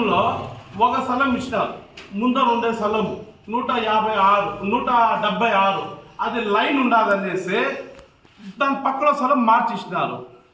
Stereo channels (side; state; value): both; identical; correlation 1.00